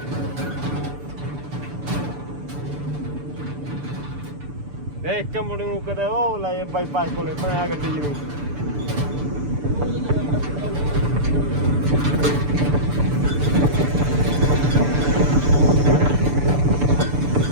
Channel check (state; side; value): late; left; 6.9 ms